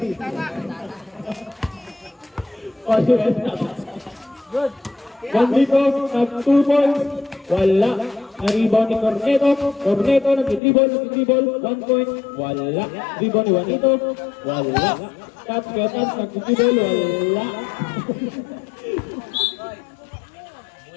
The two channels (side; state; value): right; drops out; at 10.6 s